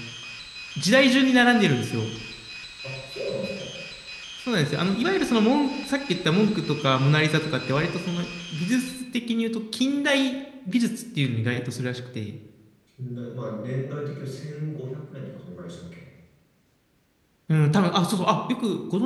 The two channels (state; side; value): identical; both; correlation 1.00